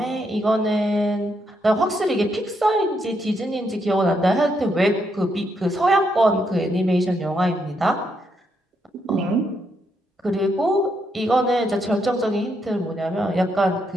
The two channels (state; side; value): normal; both; correlation 0.78